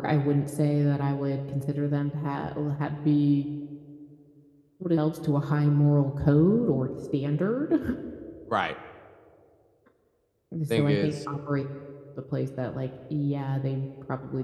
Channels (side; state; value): both; identical; correlation 1.00